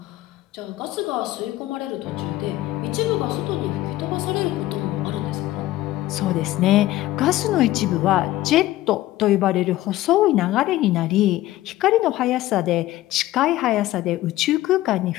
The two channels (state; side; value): quieter; right; 15.8 dB